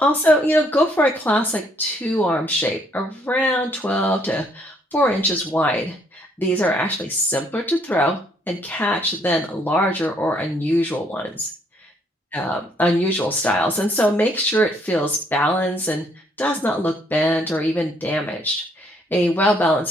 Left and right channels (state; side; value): normal; both; correlation 0.67